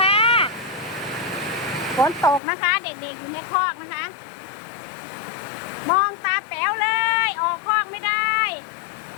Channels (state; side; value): drops out; right; at 2.4 s